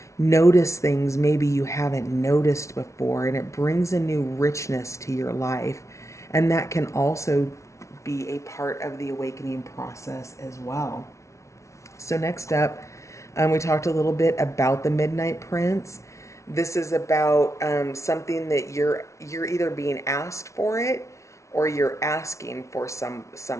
notice things maybe you haven't noticed before, and it brings a new richness to your life. And that can also be a part of the awakening process as well. So next up, we talked a little bit about the Midnight Prince. This is about something that you're either being asked for it or you're asking for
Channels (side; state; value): right; late; 0.14 ms